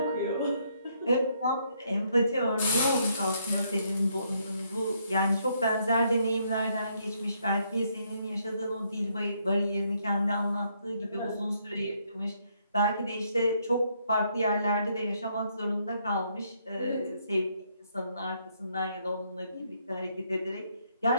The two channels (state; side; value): inverted; both; correlation -0.72